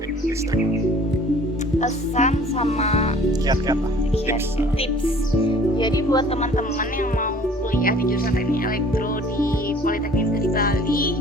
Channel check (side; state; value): both; normal; correlation 0.51